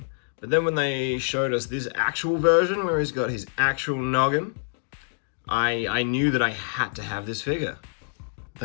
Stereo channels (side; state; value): right; silent; digital silence